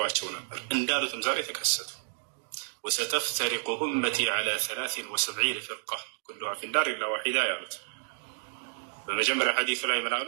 ነበር። እንዳሉትም ዛሬ ተከሰቱ። ወሰተፍተሪቁ ኡመቲ ዐላ 73 ፍርቃ ኩሉሃ ፊናር ኢላ ዋሒዳ ያሉት። በመጀመሪያ ሐዲሱ ላይ ምን አሉ?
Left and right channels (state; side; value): silent; left; digital silence